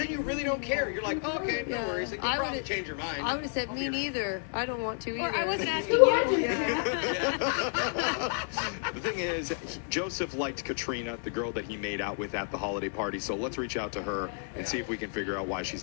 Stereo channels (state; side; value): silent; right; 57 dB below the other